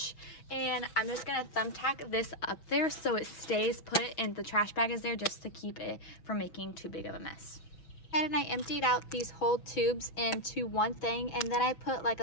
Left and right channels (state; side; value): late; right; 6.2 ms